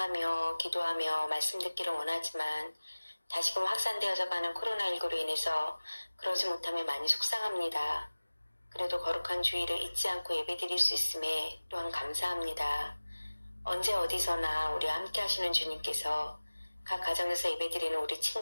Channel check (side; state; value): both; inverted; correlation -1.00